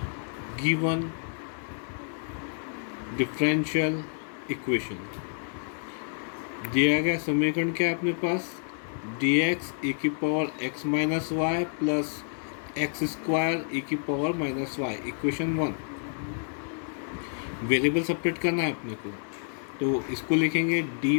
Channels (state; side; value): silent; right; digital silence